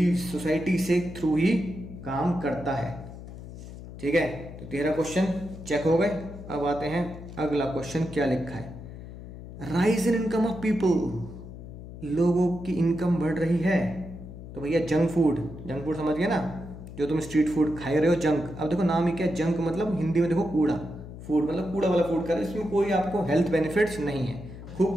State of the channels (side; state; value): left; noise; hum, 13 dB below the sound